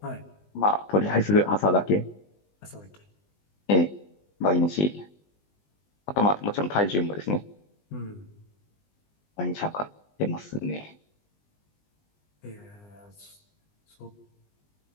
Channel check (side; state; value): right; late; 20 ms